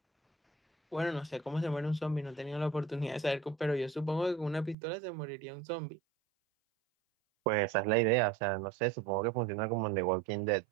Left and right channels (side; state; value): left; drops out; at 4.8 s